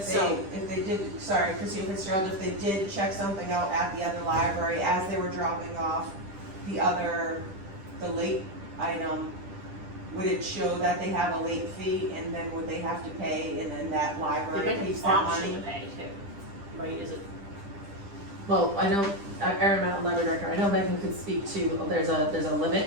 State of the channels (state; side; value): late; left; 10 ms